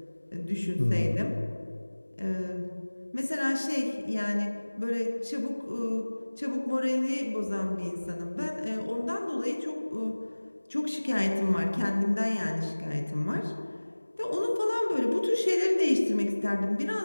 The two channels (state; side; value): inverted; both; correlation -1.00